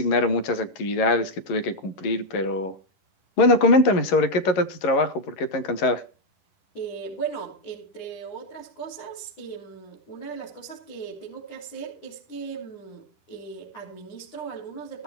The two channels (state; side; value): late; right; 11 ms